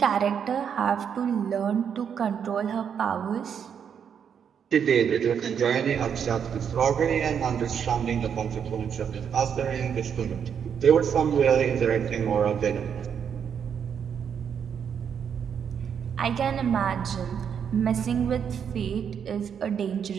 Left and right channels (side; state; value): left; quieter; 7.7 dB